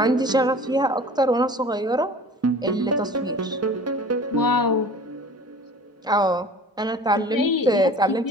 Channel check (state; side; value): normal; both; correlation 0.43